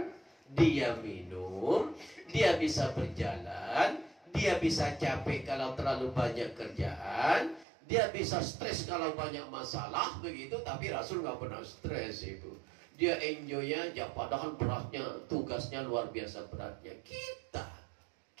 dia minum, dia bisa berjalan, dia bisa capek kalau terlalu banyak kerjaan, dia bisa stres kalau banyak masalah begitu. Tapi Rasul nggak pernah stres Ibu. Dia enjoy aja, padahal beratnya, tugasnya luar biasa beratnya.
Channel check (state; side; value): drops out; left; at 7.7 s